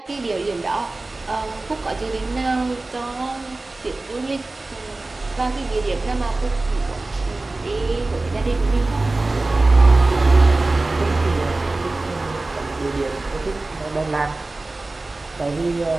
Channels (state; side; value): quieter; left; 3.1 dB